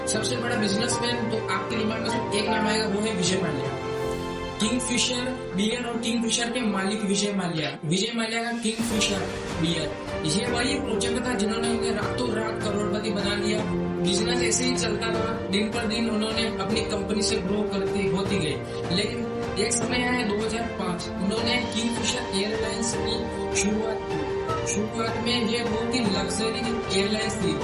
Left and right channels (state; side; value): identical; both; correlation 1.00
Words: सबसे बड़ा बिजनेसमैन तो आपके दिमाग में सिर्फ एक नाम आएगा, वो है विजय माल्या। किंगफिशर बियर और किंगफिशर के मालिक विजय माल्या। विजय माल्या का किंगफिशर बियर ये वही प्रोजेक्ट था जिन्होंने उन्हें रातों रात करोड़पति बना लिया। बिजनेस ऐसे ही चलता रहा, दिन पर दिन उन्होंने अपनी कंपनी से ग्रो करती होती गई। लेकिन एक समय आया 2005, उन्होंने किंगफिशर एयरलाइंस की शुरुआत की। शुरुआत में ये बहुत ही लग्जरी एयरलाइंस थी